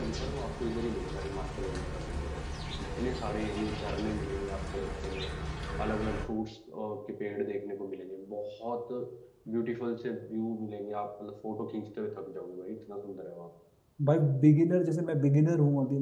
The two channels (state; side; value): identical; both; correlation 1.00